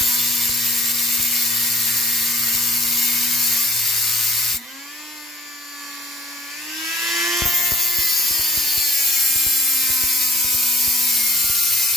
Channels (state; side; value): normal; both; correlation 0.56